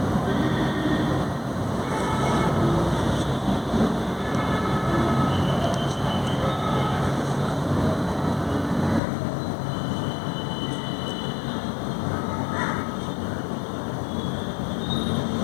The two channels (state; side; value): drops out; right; at 9.0 s